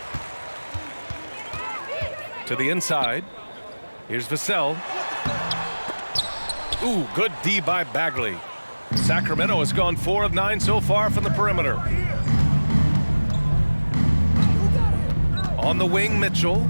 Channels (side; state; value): both; inverted; correlation -1.00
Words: To the inside. Here's Vassell. Ooh, good D by Bagley. Sacramento has gone 4 of 9 so far from the perimeter. On the wing, Mitchell,